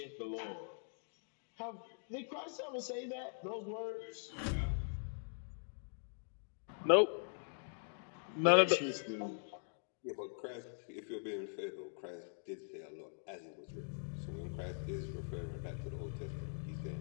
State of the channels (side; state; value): right; silent; digital silence